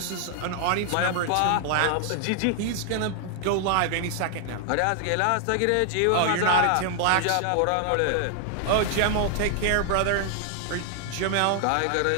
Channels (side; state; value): both; different; correlation 0.00